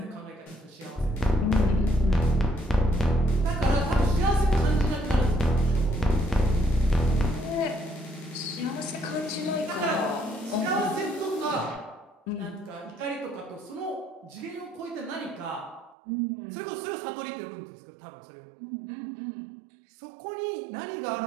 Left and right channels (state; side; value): drops out; left; at 16.0 s